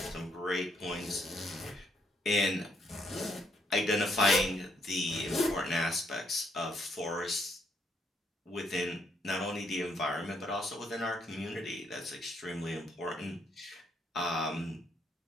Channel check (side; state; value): both; normal; correlation 0.72